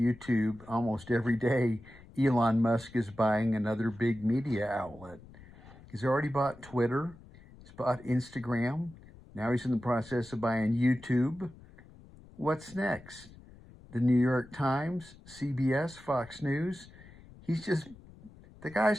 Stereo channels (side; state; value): left; noise; rumble, 21 dB below the sound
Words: almost every day. Elon Musk is buying another big media outlet. He's already bought Twitter, he's bought Instagram. Now he's in the process of buying YouTube. What's next? The New York Times, CBS, Fox News. He's just, the